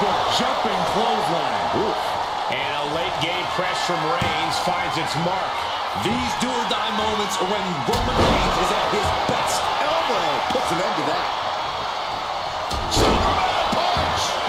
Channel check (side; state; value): both; identical; correlation 1.00